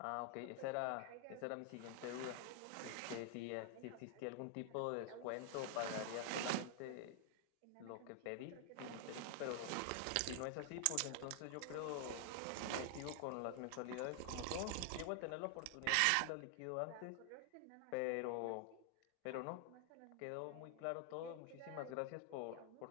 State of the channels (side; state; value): both; different; correlation 0.00